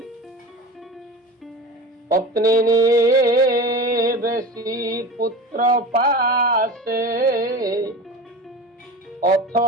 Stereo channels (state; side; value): normal; both; correlation 0.32